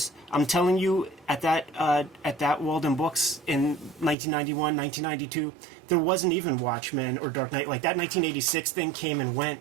Yeah. I'm telling you, at that Walden Books in 1991, 1992, there wasn't even Watchmen or Dark Knight. Like, that 1986 thing came and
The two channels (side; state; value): left; drops out; at 4.2 s